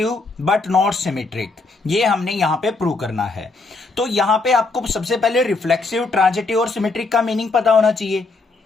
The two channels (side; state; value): right; quieter; 3.7 dB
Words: but not symmetric. ये हमने यहां पे प्रूव करना है। तो यहां पे आपको सबसे पहले रिफ्लेक्सिव ट्रांजिटिव और सिमेट्रिक का मीनिंग पता होना चाहिए।